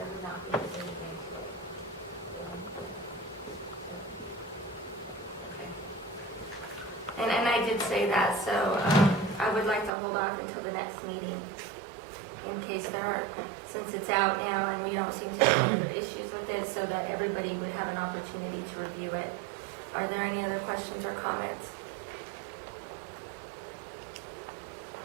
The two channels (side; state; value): left; drops out; at 9.9 s